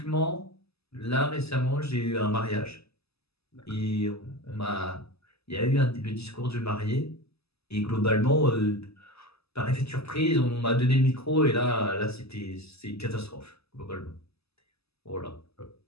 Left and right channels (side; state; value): right; late; 0.79 ms